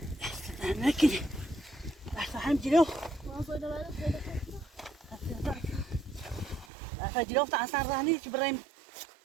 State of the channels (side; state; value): left; drops out; at 6.7 s